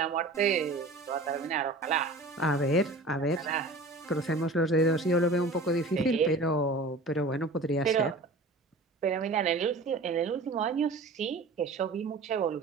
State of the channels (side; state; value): left; quieter; 3.1 dB